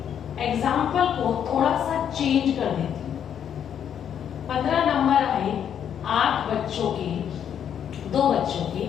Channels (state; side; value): quieter; right; 8.9 dB